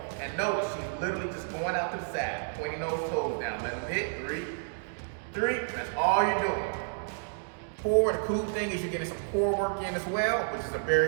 And notice, she's literally just going out to the side, pointing those toes down. Let them hit, 3, 3, and that's all you're doing. 4, the cool thing is you're getting some core work in as well, which is a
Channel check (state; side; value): silent; left; digital silence